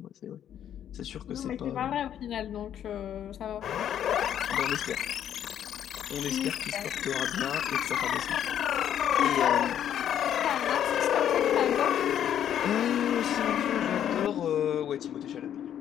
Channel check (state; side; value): quieter; right; 10.0 dB